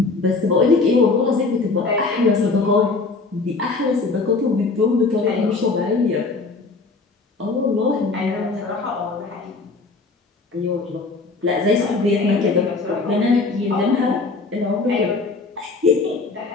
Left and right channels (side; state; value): right; quieter; 3.9 dB